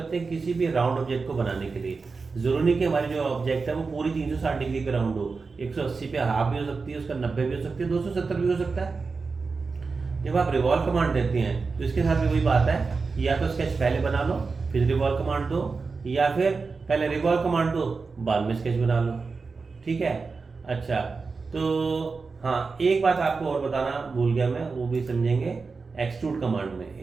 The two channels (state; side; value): quieter; left; 4.5 dB